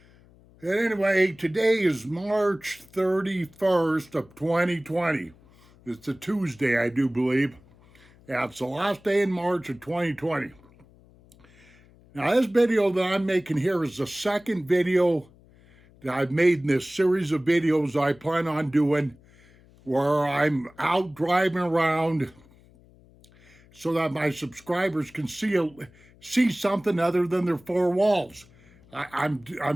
And anyway, today is March 31st of 2020. It's a Tuesday, I do believe. Yeah, it's the last day in March of 2020. Now, this video that I'm making here is the second video that I've made in this series of videos I plan on doing where I'm out driving around so that my subscribers can see something other than their four walls. I'm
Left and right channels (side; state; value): left; noise; hum, 27 dB below the sound